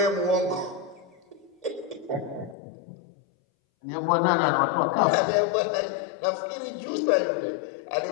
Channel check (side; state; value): right; drops out; at 2.6 s